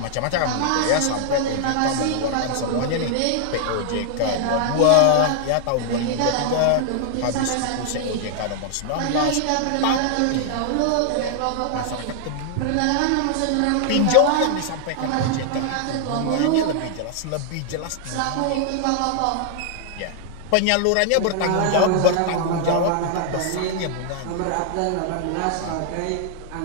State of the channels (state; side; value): different; both; correlation 0.00